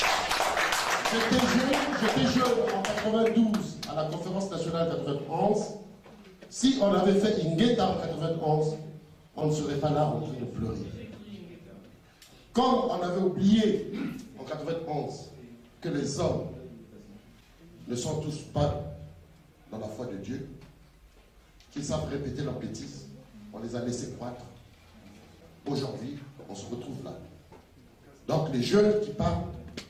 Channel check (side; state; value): both; identical; correlation 1.00